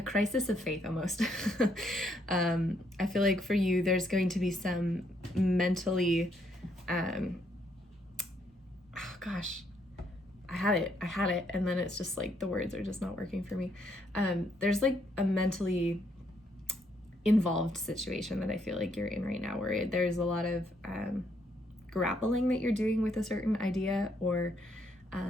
crisis of faith almost. I feel like for you, there's going to be some mentally, oh gosh, I had it, and then it's just like the words are just not working for me. There's like a mentally involved situation that I feel like you're in right now, where there's a lot of grappling that you're doing with a certain idea, or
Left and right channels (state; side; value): normal; both; correlation 0.72